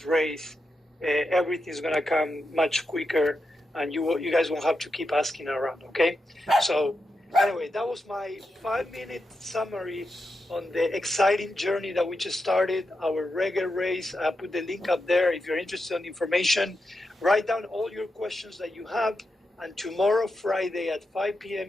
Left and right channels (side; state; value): both; normal; correlation 0.87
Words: race, everything's going to come much quicker, and you guys won't have to keep asking around, okay? So anyway, that was my 5-minute summary on the exciting journey that we just started, our reggae race. I put the link up there if you're interested in information. Write down all your questions that you have, and tomorrow, Friday at 5